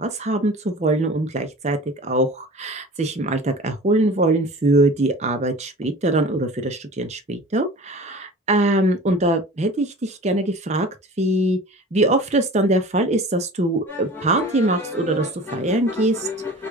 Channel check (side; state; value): both; normal; correlation 0.40